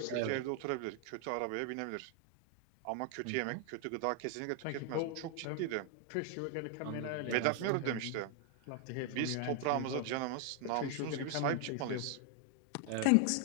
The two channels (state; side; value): different; both; correlation 0.00